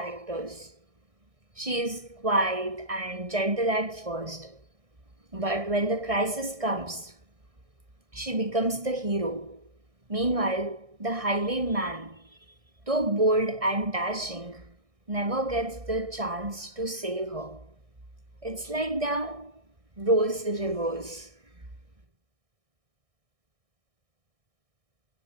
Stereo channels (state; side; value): late; left; 1.6 ms